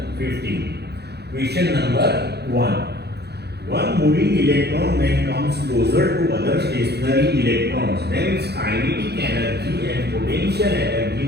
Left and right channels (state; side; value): late; left; 0.48 ms